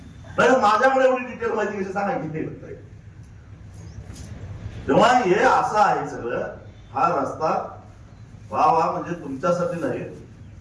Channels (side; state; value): both; identical; correlation 1.00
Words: माझ्याकडे एवढी डिटेल माहिती कशी सांगायची? तेव्हा हे असं आहे सगळं. हा रस्ता वा म्हणजे तुमच्यासाठी नाही,